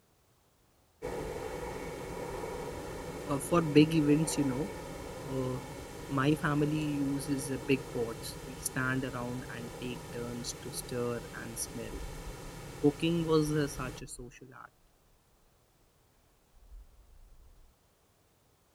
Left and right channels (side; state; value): both; identical; correlation 1.00